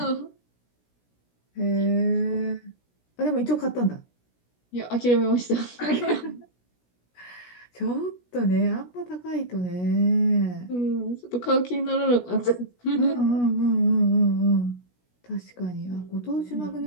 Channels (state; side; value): late; right; 17 ms